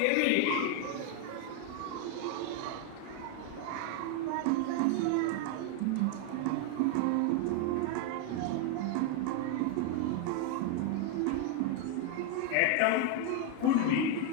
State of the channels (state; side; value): different; both; correlation 0.01